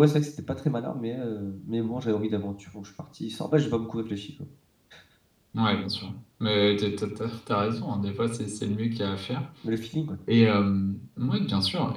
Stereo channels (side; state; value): both; identical; correlation 1.00